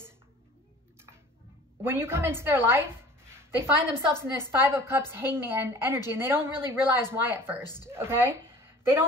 when you come into their life, they find themselves in this 5 of Cups Hangman energy, and they don't really realize why at first, okay? They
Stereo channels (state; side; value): normal; both; correlation 0.46